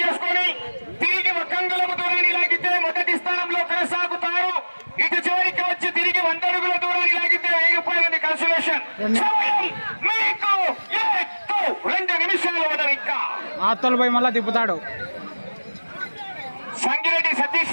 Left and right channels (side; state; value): both; inverted; correlation -1.00